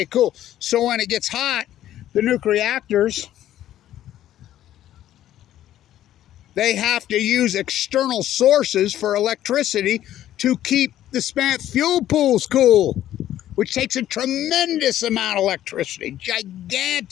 cool. So when it gets hot, the nuclear reactors, they have to use external sources for electricity to keep the spent fuel pools cool, which takes a tremendous amount of electricity,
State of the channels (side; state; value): right; quieter; 12.4 dB